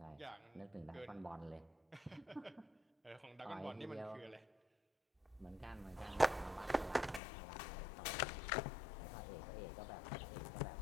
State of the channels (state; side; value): drops out; right; at 7.2 s